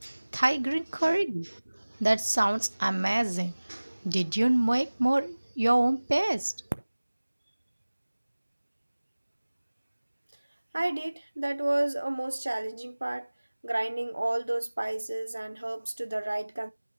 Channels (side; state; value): both; inverted; correlation -1.00